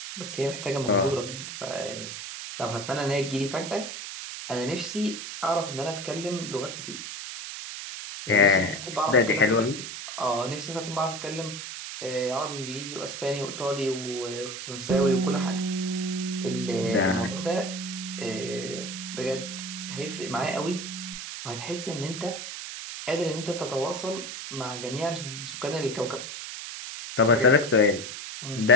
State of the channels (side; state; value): right; noise; hiss, 8 dB below the sound